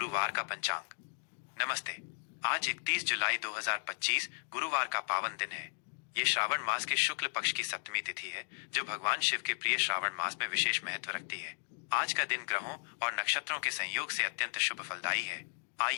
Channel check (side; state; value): right; silent; digital silence